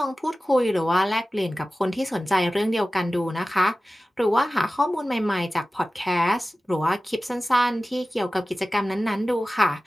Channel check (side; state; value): both; normal; correlation 0.96